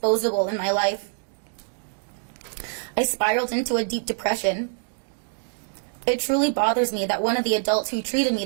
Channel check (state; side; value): silent; left; digital silence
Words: in my life. I spiraled into a deep depression. It truly bothers me that one of the adults who treated me